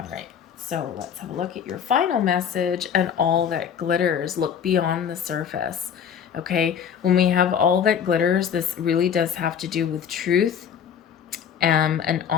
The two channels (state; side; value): quieter; right; 8.1 dB